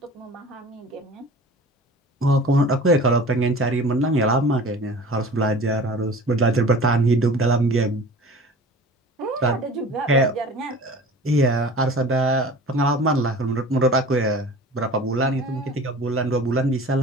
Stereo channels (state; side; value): normal; both; correlation 0.42